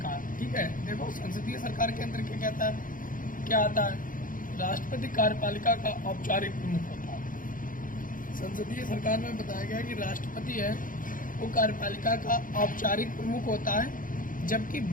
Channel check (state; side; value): late; right; 0.39 ms